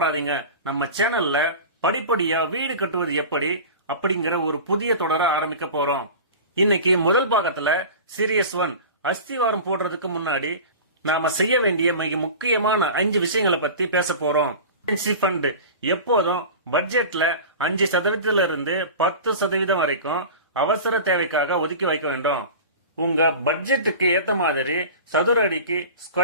நம்ம சேனல்ல படிப்படியா வீடு கட்டுவது எப்படி அப்படிங்கிற ஒரு புதிய தொடரை ஆரம்பிக்க போறோம். இன்னைக்கு முதல் பாகத்துல சீரியஸ் 1 அஸ்திவாரம் போடுறதுக்கு முன்னாடி நாம செய்ய வேண்டிய மிக முக்கியமான 5 விஷயங்களை பத்தி பேச போறோம். ஃபண்ட் எப்போதும் பட்ஜெட்ல 5% இருந்து 10% வரைக்கும் அவசர தேவைக்காக ஒதுக்கி வைக்க வேண்டும். உங்க பட்ஜெட்டுக்கு ஏத்த மாதிரி சதுர அடிக்கு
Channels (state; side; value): inverted; both; correlation -0.34